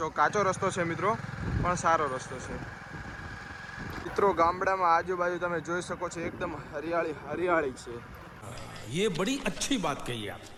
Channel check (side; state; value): both; identical; correlation 1.00